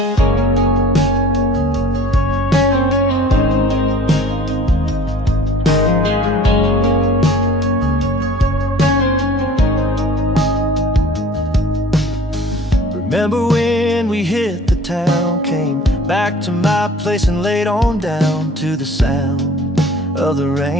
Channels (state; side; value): normal; both; correlation 0.48